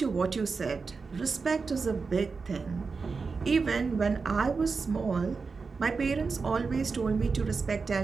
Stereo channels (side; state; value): left; quieter; 4.7 dB